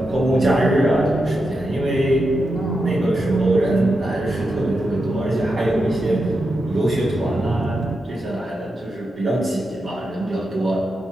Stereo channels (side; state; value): both; normal; correlation 0.87